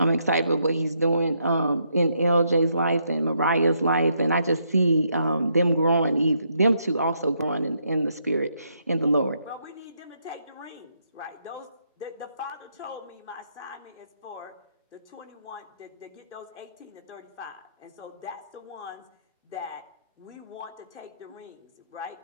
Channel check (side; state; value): both; inverted; correlation -0.75